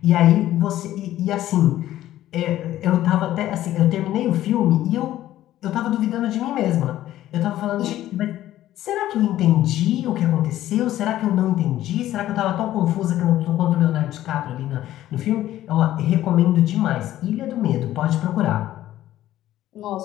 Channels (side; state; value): right; quieter; 13.7 dB